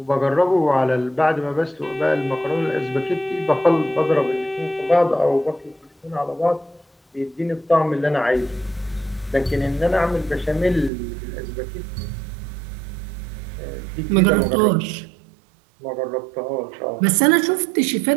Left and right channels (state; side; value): drops out; left; at 10.9 s